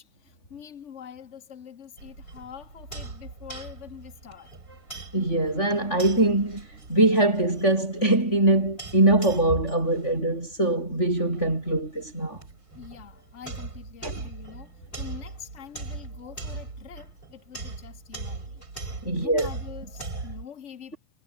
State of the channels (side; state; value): right; late; 3.4 ms